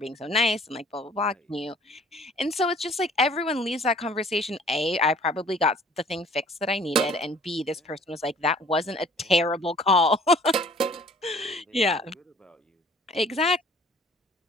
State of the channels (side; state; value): both; normal; correlation 0.53